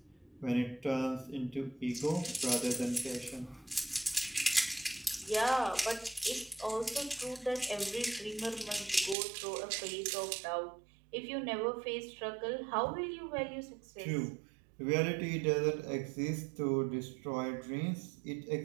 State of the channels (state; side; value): drops out; left; at 9.2 s